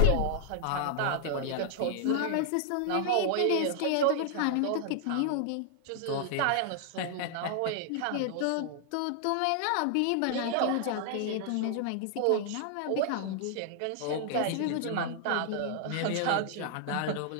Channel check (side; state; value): both; different; correlation -0.01